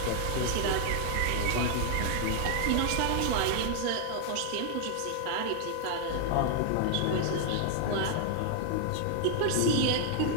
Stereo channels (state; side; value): different; both; correlation 0.00